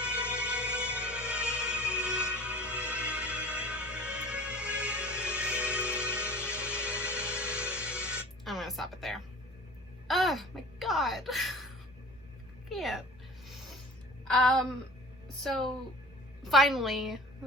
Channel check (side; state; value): both; normal; correlation 0.42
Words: My God. Can't. So finally,